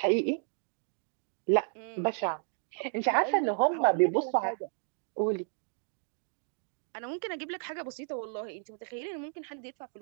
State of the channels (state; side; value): silent; left; 56 dB below the other